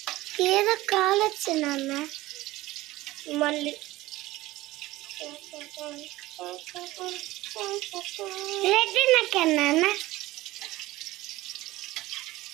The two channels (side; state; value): left; quieter; 17.9 dB